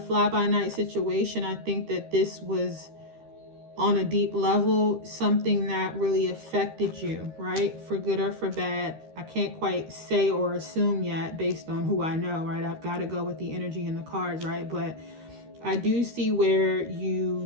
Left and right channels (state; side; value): late; left; 13 ms